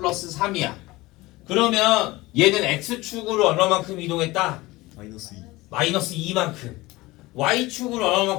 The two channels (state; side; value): quieter; right; 20.3 dB